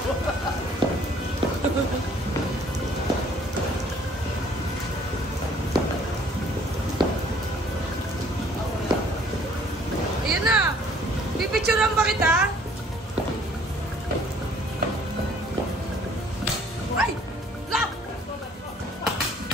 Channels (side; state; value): both; normal; correlation 0.57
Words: Ayan na! Pipicturean ba kita? Ay! La!